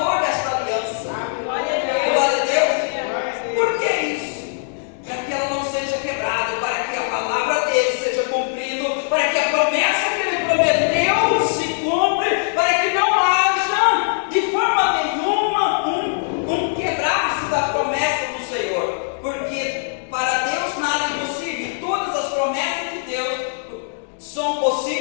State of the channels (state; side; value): silent; right; digital silence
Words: desta aliança. Glória a Deus. Por que isso? Para que ela não seja quebrada, para que a palavra dele seja cumprida, para que a promessa que ele prometeu se cumpra, para que não haja de forma nenhuma um quebrar-se da promessa do Senhor. Porque para Deus nada é impossível, todas as promessas de Deus são